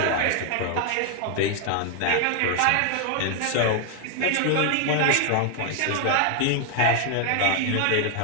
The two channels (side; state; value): both; different; correlation 0.00